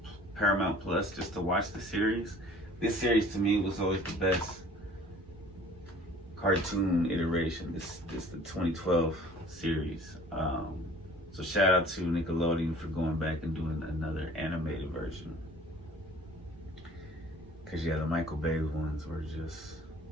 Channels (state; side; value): normal; both; correlation 0.49